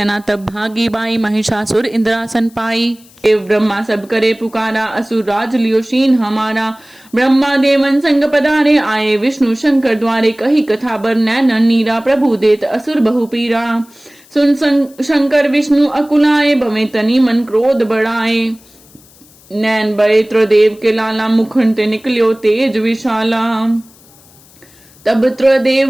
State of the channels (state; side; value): noise; left; hiss, 27 dB below the sound